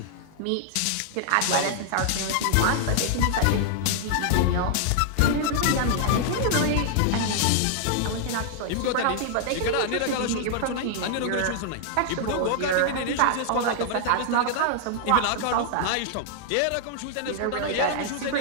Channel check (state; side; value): different; both; correlation -0.01